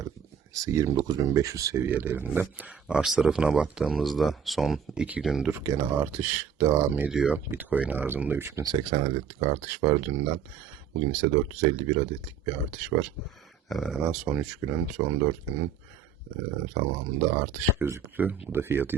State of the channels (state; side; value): quieter; left; 7.1 dB